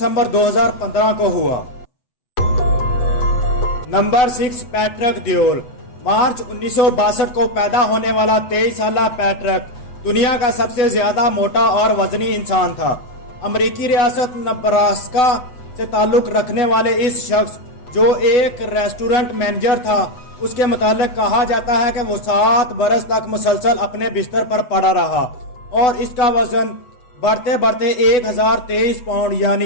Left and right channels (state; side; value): late; right; 8.0 ms